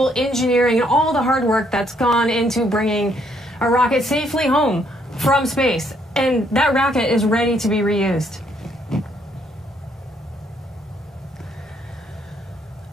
engineering and all the hard work that's gone into bringing a rocket safely home from space. And that rocket is ready to be reused.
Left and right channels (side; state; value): both; normal; correlation 0.70